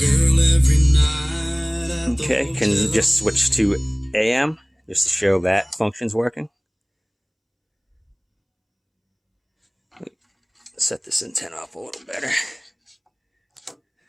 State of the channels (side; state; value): both; identical; correlation 1.00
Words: every night. Okay, can just switch to AM just to show that function's working. Set this antenna up a little better.